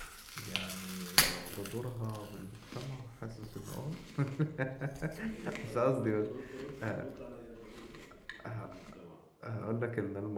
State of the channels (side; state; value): both; identical; correlation 1.00